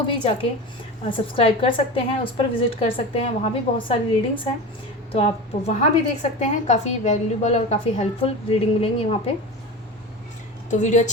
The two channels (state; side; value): normal; both; correlation 0.29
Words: भी जाके सब्सक्राइब कर सकते हैं, उस पर विज़िट कर सकते हैं, वहाँ भी बहुत सारी रीडिंग्स हैं, तो आप वहाँ भी देख सकते हैं, काफ़ी वैल्यूबल और काफ़ी हेल्पफुल रीडिंग मिलेंगी वहाँ पे। तो वीडियो